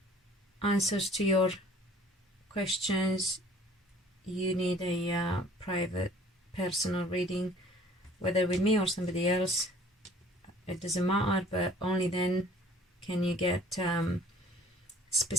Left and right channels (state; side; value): normal; both; correlation 0.53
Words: answers to your questions, you need a private personal reading, whether with me or somebody else, it doesn't matter, but only then can you get